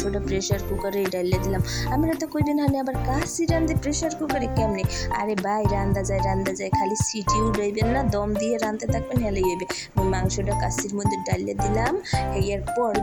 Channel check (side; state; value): both; identical; correlation 1.00